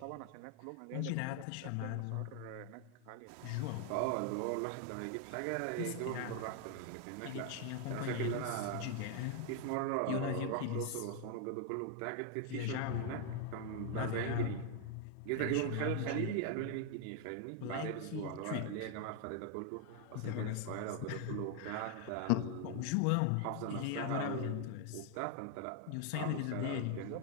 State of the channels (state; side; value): different; both; correlation 0.00